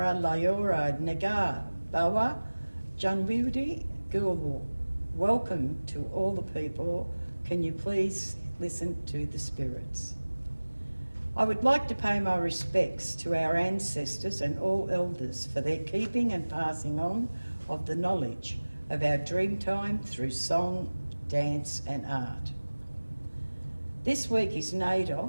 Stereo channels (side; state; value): both; inverted; correlation -1.00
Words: Layora Nagar Bawa Janwudi Gulwu. Welcome to all the people. Can you please listen to the spirits? I would like to pay my respects to our ancestors and all elders for their keeping and passing on of the knowledge of our Dreamtime through song, dance and art. This week is NAIDOC,